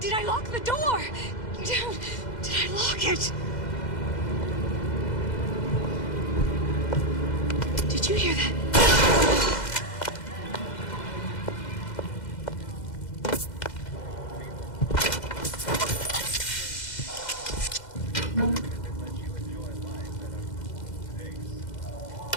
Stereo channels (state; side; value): late; right; 2.0 ms